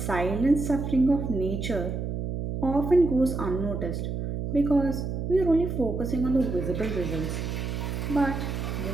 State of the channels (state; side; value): noise; right; hum, 3 dB below the sound